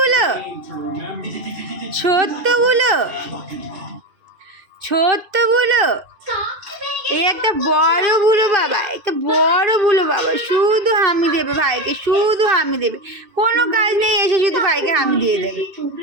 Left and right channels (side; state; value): left; late; 2.7 ms